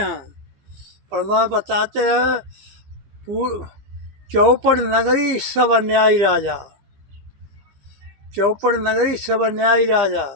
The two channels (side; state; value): left; late; 15 ms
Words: परमात्मा बताते हैं चौपड़ नगरी सब अन्यायी राजा, चौपड़ नगरी सब अन्यायी राजा।